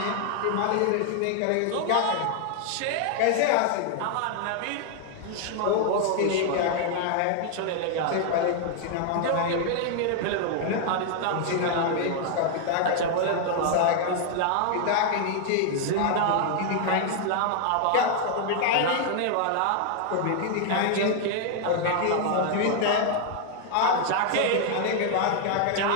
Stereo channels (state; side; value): different; both; correlation 0.00